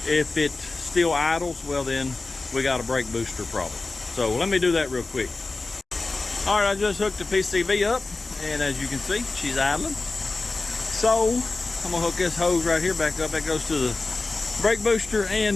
if it still idles, well then we got a brake booster problem. So let me do that real quick. All right, I just hooked the PCV up, and as you can see, she's idling. So I'm gonna hook this hose right here back up. That goes to the brake booster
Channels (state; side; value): quieter; right; 3.5 dB